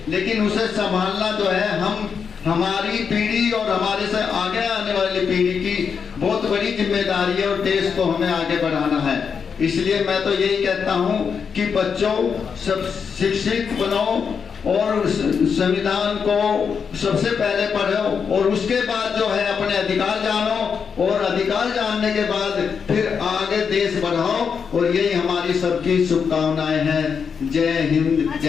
लेकिन उसे संभालना जो है हमारी पीढ़ी और हमारे से आगे आने वाली पीढ़ी की बहुत बड़ी जिम्मेदारी है और देश को हमें आगे बढ़ाना है। इसलिए मैं तो यही कहता हूँ कि बच्चों सब शिक्षित बनो और संविधान को सबसे पहले पढ़ो और उसके बाद जो है अपने अधिकार जानो और अधिकार जानने के बाद फिर आगे देश बढ़ाओ। और यही हमारी सबकी शुभकामनाएं हैं। जय हिंद,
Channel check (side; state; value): right; quieter; 6.3 dB